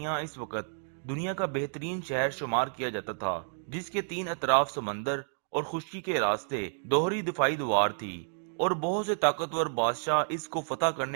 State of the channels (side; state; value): left; silent; digital silence